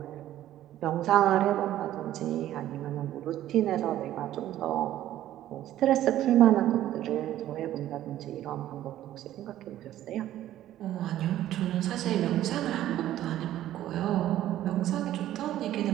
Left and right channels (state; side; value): quieter; left; 13.0 dB